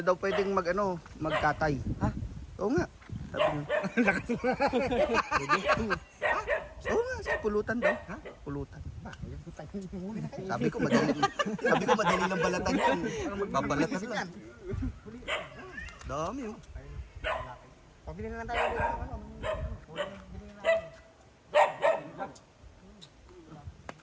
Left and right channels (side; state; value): both; identical; correlation 1.00